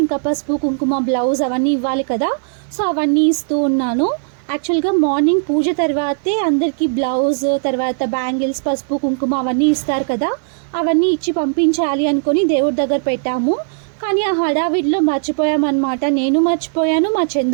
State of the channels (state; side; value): silent; left; digital silence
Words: ఇంకా పసుపు కుంకుమ బ్లౌజ్ అవన్నీ ఇవ్వాలి కదా. సో అవన్నీ ఇస్తూ ఉన్నాను. యాక్చువల్గా మార్నింగ్ పూజ తర్వాతే అందరికీ బ్లౌజ్ తర్వాత బ్యాంగిల్స్ పసుపు కుంకుమ అవన్నీ ఇస్తారు కదా, అవన్నీ ఇచ్చి పంపించాలి అనుకొని దేవుడి దగ్గర పెట్టాము. కానీ ఆ హడావిడిలో మర్చిపోయామన్నమాట. నేను మర్చిపోయాను, మా